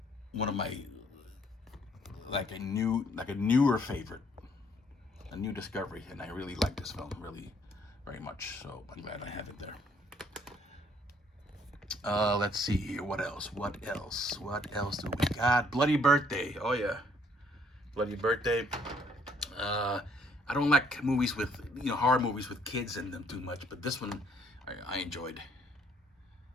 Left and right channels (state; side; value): normal; both; correlation 0.65